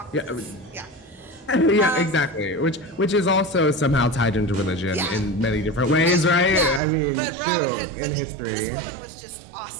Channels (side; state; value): left; drops out; at 6.8 s